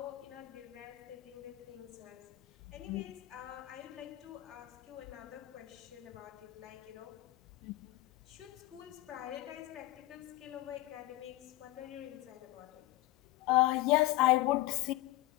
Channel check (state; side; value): quieter; right; 17.9 dB